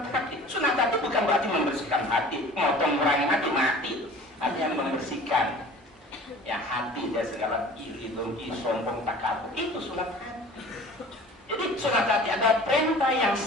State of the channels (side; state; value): both; normal; correlation 0.44